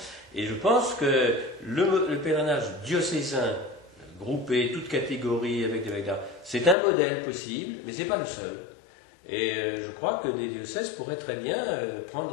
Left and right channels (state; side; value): drops out; right; at 6.8 s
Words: Et je pense que le pèlerinage diocésain, groupé, toutes catégories, c'est un modèle possible, mais ce n'est pas le seul. Et je crois que des diocèses pourraient très bien